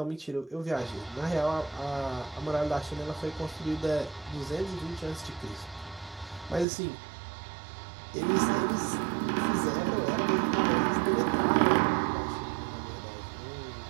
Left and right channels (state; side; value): drops out; left; at 6.7 s